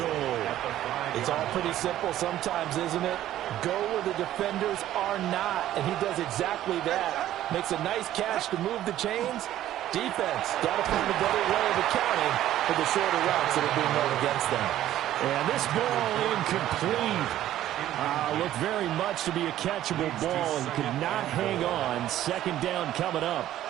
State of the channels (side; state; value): left; quieter; 12.9 dB